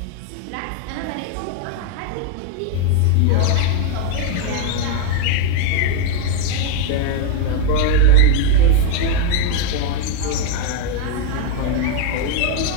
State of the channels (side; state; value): both; different; correlation 0.01